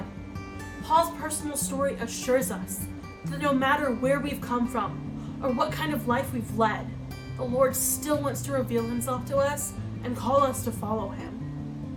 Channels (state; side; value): identical; both; correlation 1.00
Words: Paul's personal story assures us that no matter where we've come from or what kind of life we've led, the Lord still wants to reveal himself to us and call us to follow him.